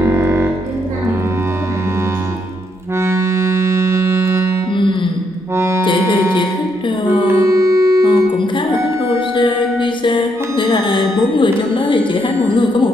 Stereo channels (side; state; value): both; normal; correlation 0.76